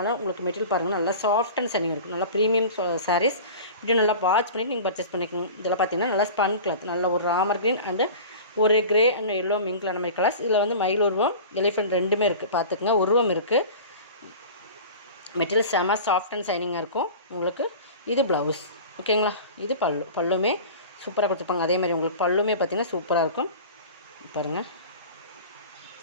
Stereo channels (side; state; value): both; inverted; correlation -0.37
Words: உங்களுக்கு மெட்டீரியல் பாருங்கள், நல்லா சாஃப்ட் அண்ட் சனிங் இருக்கும். நல்லா ப்ரீமியம் சாரீஸ் இப்படி நல்லா வாட்ச் பண்ணிவிட்டு நீங்கள் பர்ச்சேஸ் பண்ணிக்கோங்க. இதெல்லாம் பார்த்தீங்கன்னா நல்லா ஸ்பன் கிளாத், நல்ல ஒரு ராமர் க்ரீன் அண்டு ஒரு கிரே அண்ட் எல்லோ மிங்க்ல அந்த மாதிரி கலர்ஸ். இதில் வந்து மயில் உருவம், எலிஃபெண்ட் ரெண்டுமே இருக்குது. பார்த்துக்குங்க, உருவம் இருக்குது. மெட்டீரியல் செம சாஃப்ட் அண்ட் சைனிங்காக இருக்கும் உங்களுக்கு. இது ப்ளவுஸ். ஓகேங்களா? இது பல்லுமே சூப்பராக கொடுத்துருப்பாங்க. அதே மாதிரி உங்களுக்கு பல்லுமே பார்த்திங்கன்னா சூப்பராக இருக்கும். பாருங்கள்,